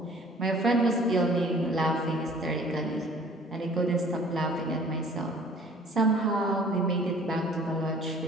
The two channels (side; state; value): both; normal; correlation 0.52